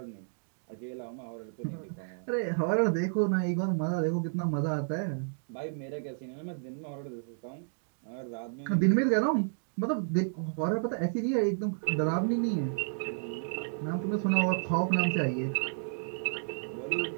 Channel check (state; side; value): silent; left; digital silence